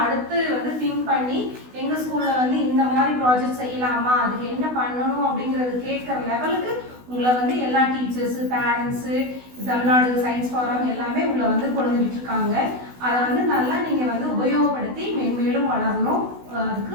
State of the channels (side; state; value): left; late; 16 ms